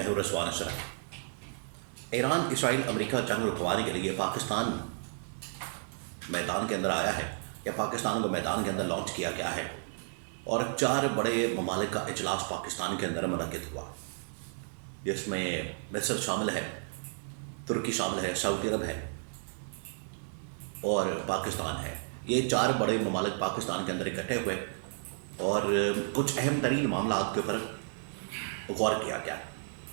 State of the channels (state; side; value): silent; left; digital silence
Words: ہوں رضوان اشرف۔ ایران اسرائیل امریکہ جنگ رکوانے کے لیے پاکستان میدان کے اندر آیا ہے یا پاکستان کو میدان کے اندر لانچ کیا گیا ہے، اور 4 بڑے ممالک کا اجلاس پاکستان کے اندر منعقد ہوا، جس میں مصر شامل ہے، ترکی شامل ہے، سعودی عرب ہے اور پاکستان ہے۔ یہ 4 بڑے ممالک پاکستان کے اندر اکٹھے ہوئے اور کچھ اہم ترین معاملات کے اوپر غور کیا گیا۔